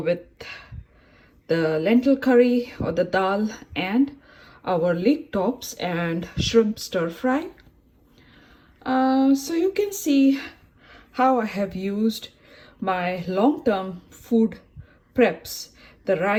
the lentil curry or the dal, and our leek tops and shrimp stir fry. So you can see how I have used my long-term food preps, the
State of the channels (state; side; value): identical; both; correlation 1.00